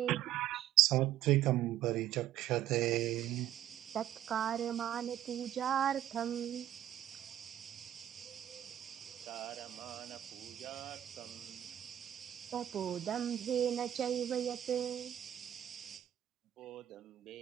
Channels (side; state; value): left; quieter; 11.9 dB